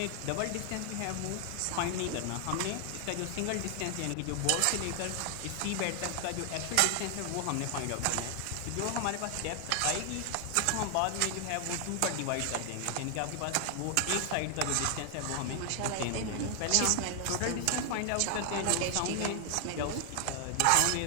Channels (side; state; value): both; different; correlation 0.00